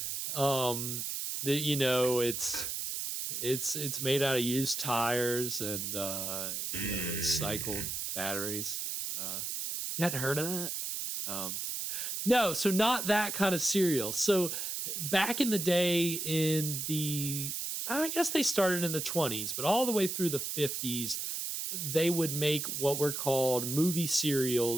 It's made out of used tires and recycled batteries. You hadn't heard of that? No, so not that kind of cereal. So back in the day, I guess they started in the 20s, but all the way through the 50s, they would make what were called movie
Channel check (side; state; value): right; noise; hiss, 3 dB below the sound